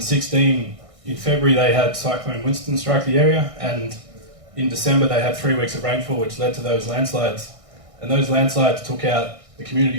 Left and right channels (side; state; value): left; late; 1.6 ms